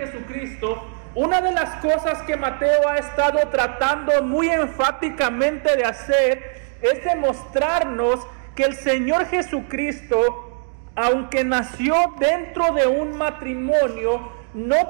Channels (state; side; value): silent; left; 55 dB below the other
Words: una de las cosas que Mateo ha estado tratando muy enfáticamente de hacer es demostrarnos que el Señor Jesucristo, aunque nació dentro de un matrimonio,